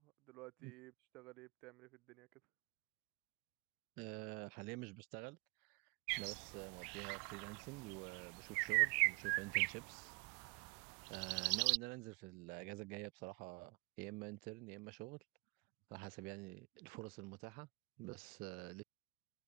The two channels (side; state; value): left; quieter; 29.7 dB